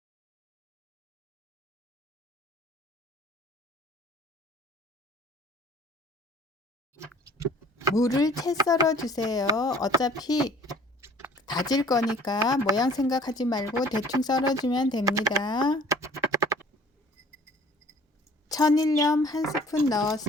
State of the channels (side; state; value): both; normal; correlation 0.52